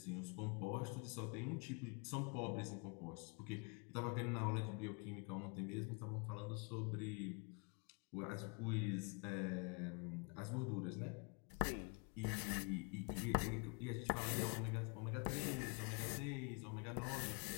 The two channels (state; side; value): quieter; right; 32.1 dB